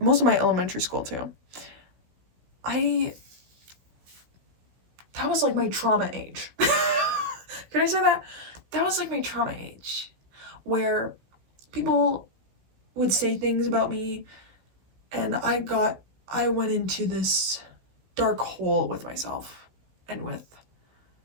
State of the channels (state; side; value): late; left; 16 ms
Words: most of my elementary school too. That was like my trauma age. Can I say that? That was like my trauma age, where people would say things about me, and I went into this dark hole with myself and with